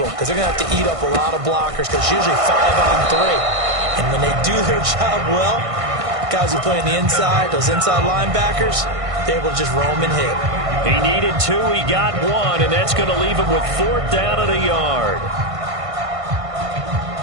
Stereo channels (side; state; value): left; late; 1.5 ms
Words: because they're going to have to eat up a lot of blockers because it's usually 5 on 3. And when they do their job well, guys who play on the inside, those inside linebackers, they're able to just roam and hit. He needed 2, he got 1, and that's going to leave him with 4th down and a yard.